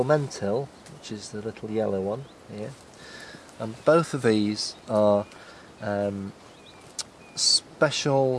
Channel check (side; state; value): both; identical; correlation 1.00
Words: which is the little yellow one here, and both of these are